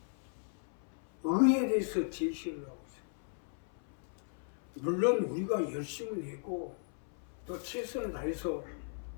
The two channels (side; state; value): right; silent; 53 dB below the other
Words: 의에 대해서 제시를 하고 있어요. 물론 우리가 열심을 내고 또 최선을 다해서